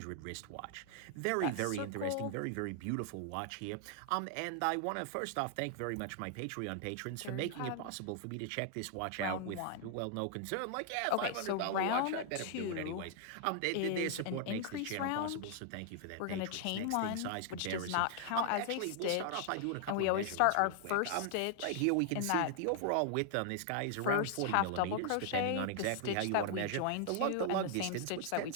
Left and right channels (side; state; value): both; different; correlation 0.00